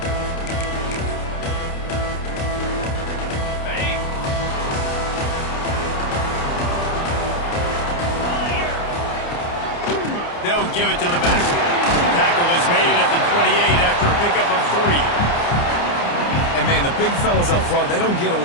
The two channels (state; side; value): late; right; 29 ms